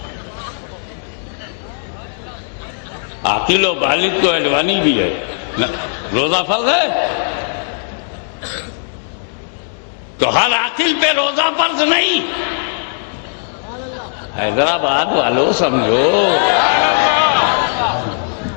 عاقل و بالغ تو اڈوانی بھی ہے. روزہ فرض ہے تو ہر عاقل پہ روزہ فرض نہیں. حیدرآباد والوں سمجھو،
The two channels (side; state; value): right; silent; 68 dB below the other